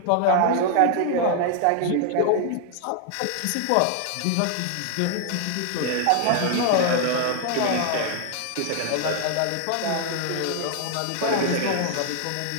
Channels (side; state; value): both; different; correlation 0.00